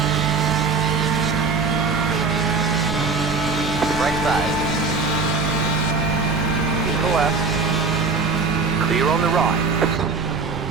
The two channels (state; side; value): quieter; left; 4.5 dB